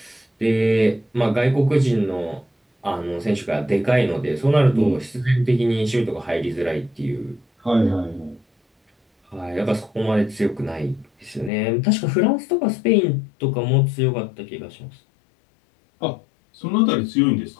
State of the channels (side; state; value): right; drops out; at 11.5 s